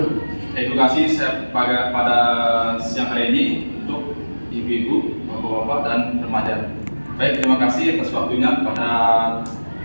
Edukasi saya pada siang hari ini untuk ibu-ibu, bapak-bapak, dan remaja. Baik, terima kasih atas waktunya kepada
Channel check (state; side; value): inverted; both; correlation -1.00